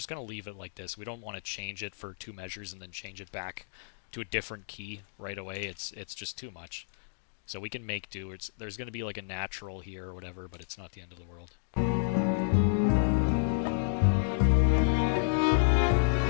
gonna leave it like this. We don't want to change it for 2 measures and then change it back to a different key right away. It's just too much. So we can make do. There's gonna be like a natural here or whatever, but it's not the end of the world.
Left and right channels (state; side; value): silent; right; digital silence